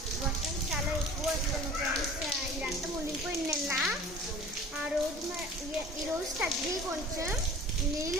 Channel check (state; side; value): normal; both; correlation 0.44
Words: వర్షం చాలా ఎక్కువ వస్తుంది ఫ్రెండ్స్. ఇదంతా మునిగిపోయింది నిన్న. ఆ రోజు ఈరోజు తగ్గి కొంచెం నీళ్ళు